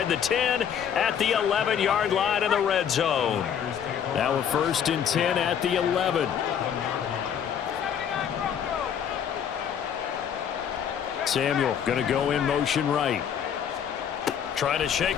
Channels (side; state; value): right; quieter; 8.5 dB